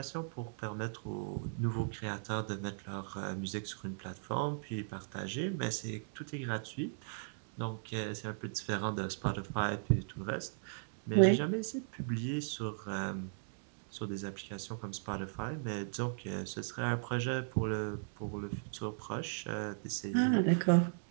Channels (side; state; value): left; silent; digital silence